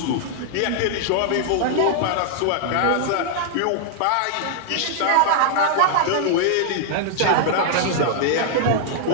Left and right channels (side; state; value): both; different; correlation 0.00